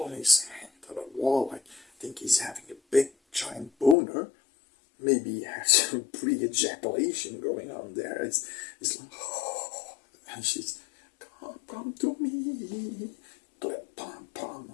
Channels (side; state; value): right; drops out; at 4.0 s